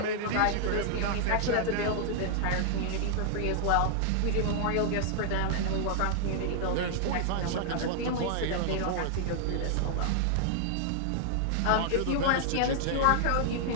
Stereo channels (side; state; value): both; different; correlation -0.01